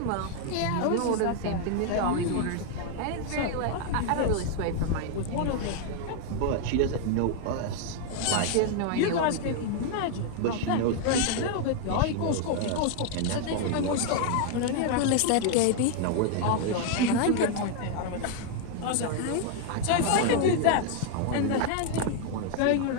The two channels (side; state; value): both; different; correlation 0.00